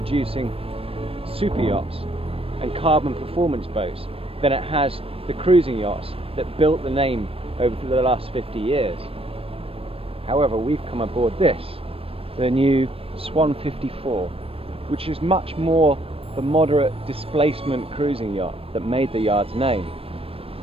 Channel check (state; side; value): late; left; 0.28 ms